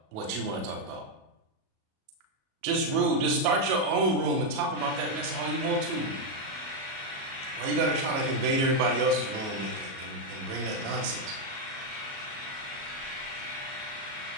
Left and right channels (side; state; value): left; late; 37 ms